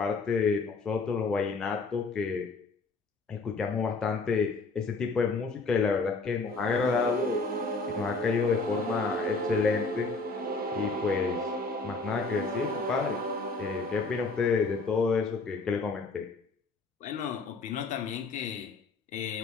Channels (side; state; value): right; quieter; 3.9 dB